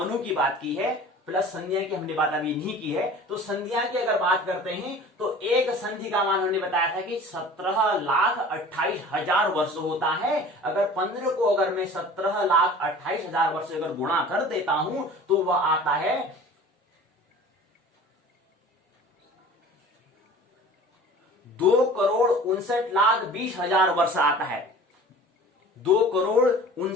की बात की है, प्लस संधिया की हमने बात अभी नहीं की है। तो संधिया की अगर बात करते हैं तो एक संधि का मान हमने बताया था कि 17,28,000 वर्ष होता है। अगर 15 को अगर मैं 17,28,000 वर्ष अगर गुणा कर देता हूं तो वह आता है 2,59,20,000 वर्ष आता है।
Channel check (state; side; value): normal; both; correlation 0.43